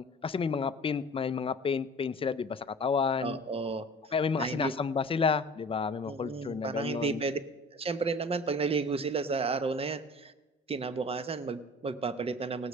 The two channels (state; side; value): normal; both; correlation 0.43